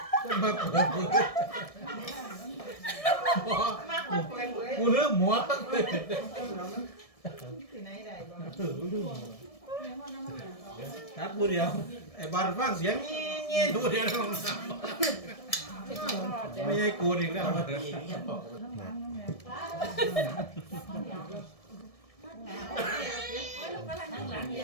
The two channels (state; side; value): late; right; 1.7 ms